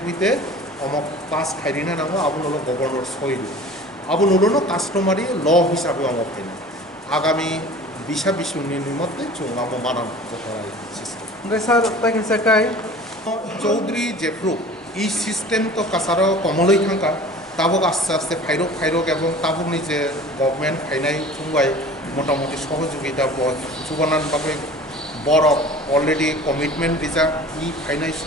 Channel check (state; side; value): normal; both; correlation 0.42